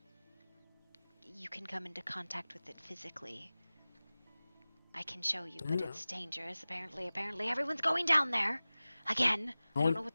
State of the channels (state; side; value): inverted; both; correlation -0.98